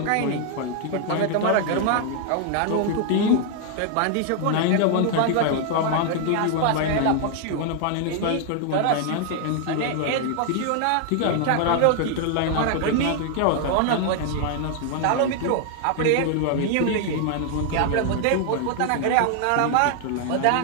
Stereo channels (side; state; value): both; different; correlation 0.00